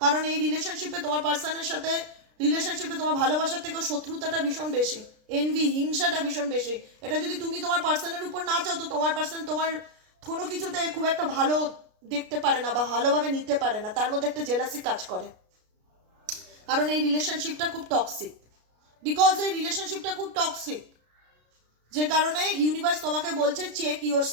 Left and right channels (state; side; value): late; left; 33 ms